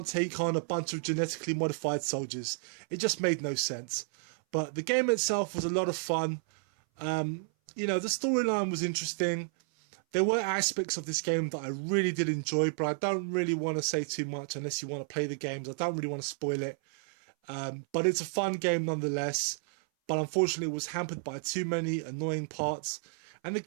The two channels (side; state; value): left; silent; 57 dB below the other